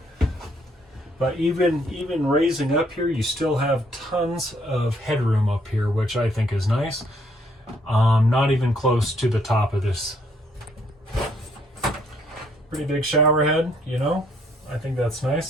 But even raising up here, you still have tons of headroom up here, which I think is nice. Not even close to the top of this. Pretty big shower head, you know. I think that's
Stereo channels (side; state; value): both; normal; correlation 0.68